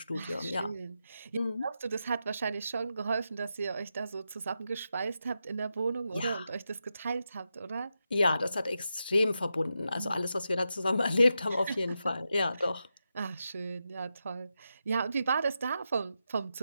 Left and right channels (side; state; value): both; inverted; correlation -0.87